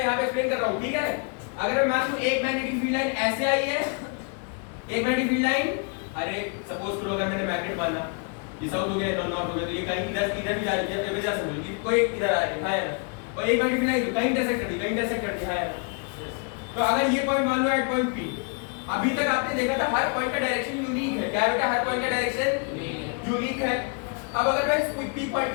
यहां पे एक्सप्लेन कर रहा हूं, ठीक है? अगर मैं मान लूं एक मैग्नेटिक फील्ड लाइन ऐसे आई है, एक मैग्नेटिक फील्ड लाइन, अरे सपोज करो अगर मैंने मैग्नेट माना ये साउथ हो गया, नॉर्थ हो गया, तो ये कहीं इधर भी जा रही है, इधर समझो ये कोई इधर आ रही है, और एक मैग्नेटिक फील्ड लाइन कहीं इंटरसेक्ट कर दी, है। तो अगर ये पॉइंट मान लो एट पॉइंट पी, अभी तक आपने देखा था हर पॉइंट का डायरेक्शन यूनिक है। क्या है बेटा? हर पॉइंट का डायरेक्शन यूनिक है। अब अगर मैं इस पी पॉइंट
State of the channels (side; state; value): right; quieter; 36.4 dB